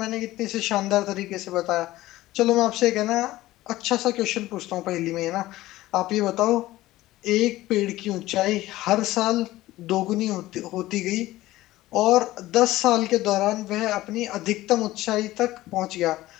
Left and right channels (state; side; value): quieter; right; 16.7 dB